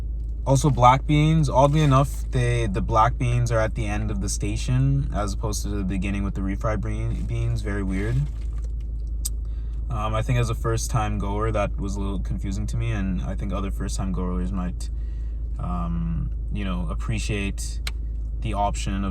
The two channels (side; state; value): both; identical; correlation 1.00